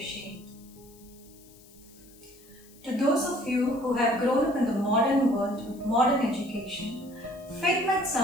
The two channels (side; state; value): left; noise; hiss, 25 dB below the sound